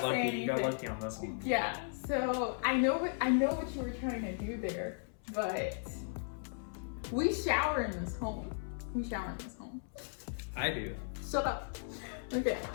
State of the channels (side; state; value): right; silent; 54 dB below the other